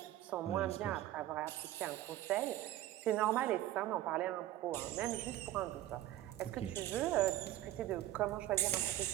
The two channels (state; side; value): quieter; left; 14.1 dB